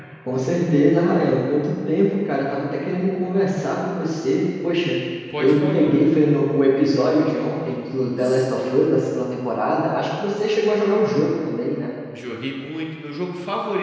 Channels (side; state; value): both; identical; correlation 1.00